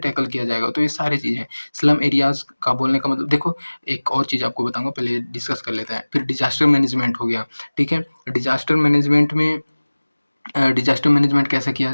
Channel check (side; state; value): both; inverted; correlation -1.00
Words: किया जाएगा? तो ये सारी चीज़ें। स्लम एरियाज़ का बोलने का मतलब देखो, एक और चीज़ आपको बताऊँगा, पहले डिस्कस कर लेते हैं। फिर डिज़ास्टर मैनेजमेंट हो गया, ठीक है? डिज़ास्टर मैनेजमेंट में डिज़ास्टर मैनेजमेंट कैसे किया